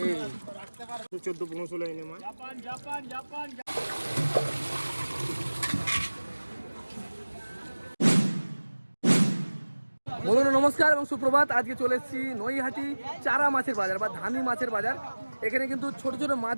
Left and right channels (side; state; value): both; inverted; correlation -1.00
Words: এই 14-15 এনে মাছ। বন্ধুরা নমস্কার এবং সুপ্রভাত। আজকে চলে এসেছি নৈহাটি চারা মাছের বাজার বা ধানি মাছের বাজার। এখানে কিন্তু ছোট ছোট